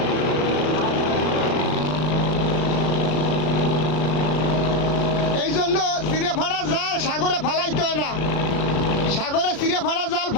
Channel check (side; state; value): right; late; 33 ms